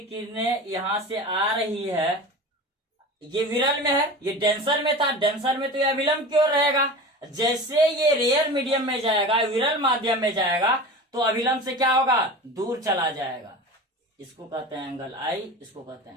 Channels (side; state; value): both; normal; correlation 0.33